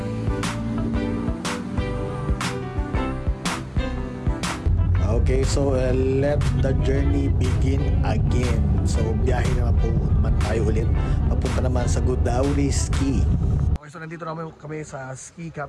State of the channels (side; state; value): both; identical; correlation 1.00